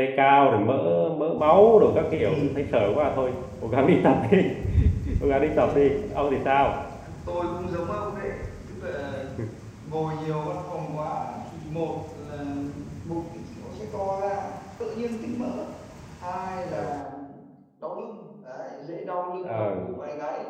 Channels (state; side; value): identical; both; correlation 1.00